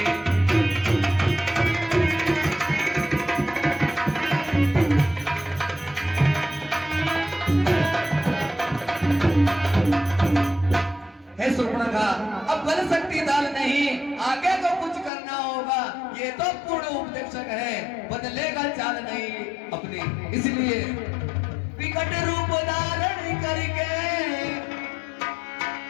हे सुर्पणखा, अब गल सकती दाल नहीं, आगे को कुछ करना होगा। ये तो पूर्ण उपदेशक है, बदलेगा चाल नहीं अपनी, इसलिए विकट रूप धारण करके,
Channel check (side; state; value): right; drops out; at 15.1 s